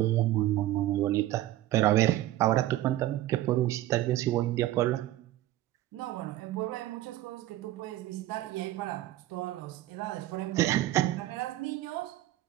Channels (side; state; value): left; quieter; 14.8 dB